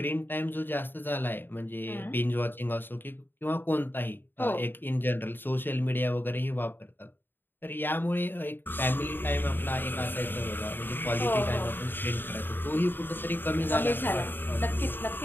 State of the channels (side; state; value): right; late; 0.096 ms